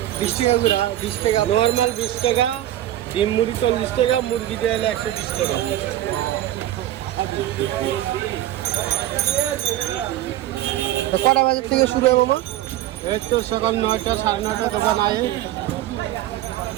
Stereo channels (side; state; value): left; quieter; 13.7 dB